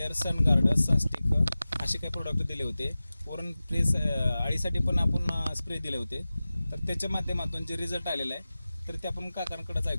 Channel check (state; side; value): inverted; both; correlation -0.96